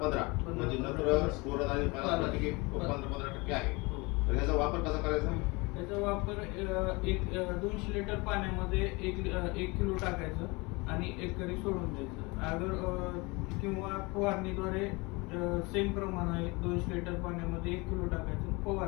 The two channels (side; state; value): right; quieter; 25.9 dB